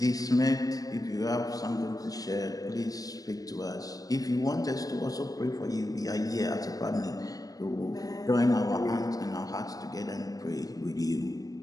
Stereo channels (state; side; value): late; right; 0.18 ms